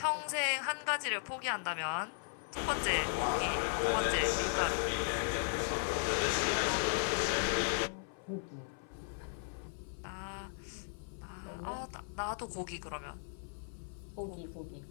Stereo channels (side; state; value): right; silent; 53 dB below the other